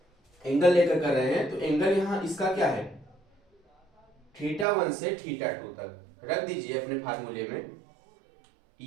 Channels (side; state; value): left; drops out; at 4.7 s